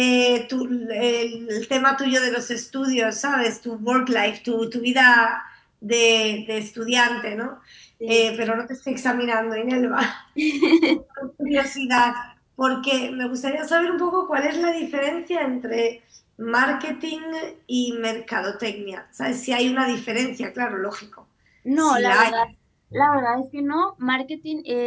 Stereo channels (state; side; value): identical; both; correlation 1.00